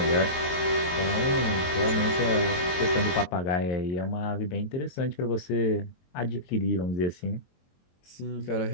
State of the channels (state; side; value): late; right; 22 ms